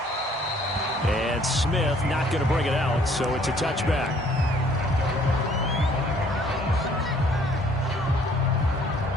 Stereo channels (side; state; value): both; normal; correlation 0.60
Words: And Smith not going to bring it out, so it's a touchback.